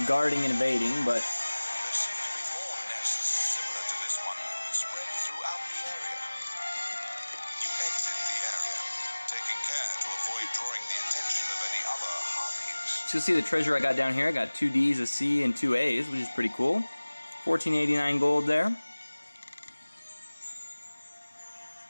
guarding and evading, but... There seem to be more nests similar to this one, spread throughout the area. there to avoid drawing the attention of any other harpies. So you'll see the treasure I got down here. I got 2 Ds, a C, and 2 A's, which is pretty cool. 1489 gold there.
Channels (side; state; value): both; inverted; correlation -1.00